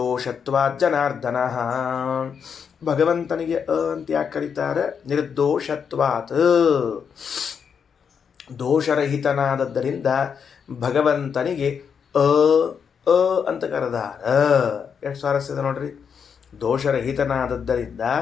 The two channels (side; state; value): right; quieter; 6.8 dB